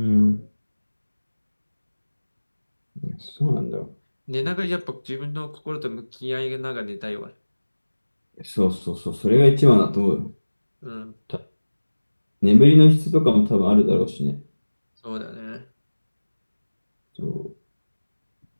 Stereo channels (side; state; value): both; inverted; correlation -1.00